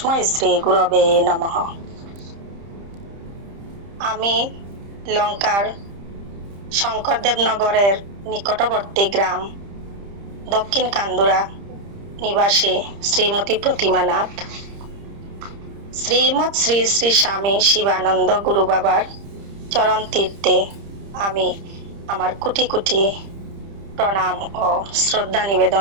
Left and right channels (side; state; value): left; late; 30 ms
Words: শ্রীগুরবে নমঃ। আমি লঙ্কার শঙ্করদেবনগরের নিকটবর্তী গ্রাম দক্ষিণ কান্দুরা নিবাসী শ্রীমতী প্রতিমা নাথ। শ্রীমৎ শ্রী শ্রী স্বামী শিবানন্দ গুরু বাবার চরণ তীর্থে আমি আমার কোটি কোটি প্রণাম ও শ্রদ্ধা